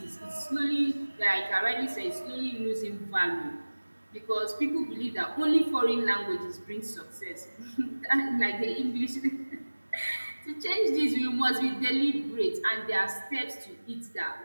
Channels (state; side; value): inverted; both; correlation -1.00